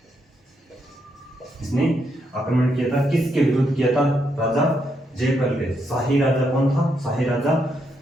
इसने आक्रमण किया था। किसके विरुद्ध किया था? राजा जयपाल के। शाही राजा कौन था? शाही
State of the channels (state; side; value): normal; both; correlation 0.79